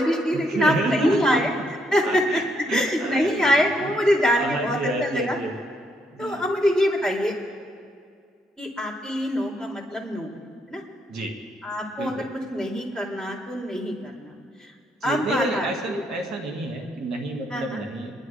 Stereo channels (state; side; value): normal; both; correlation 0.75